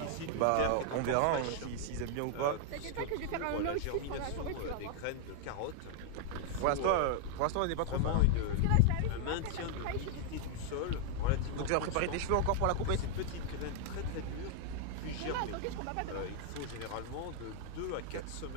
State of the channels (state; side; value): different; both; correlation 0.00